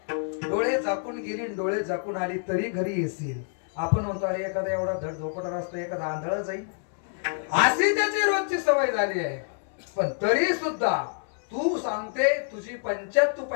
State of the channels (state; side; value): silent; right; 60 dB below the other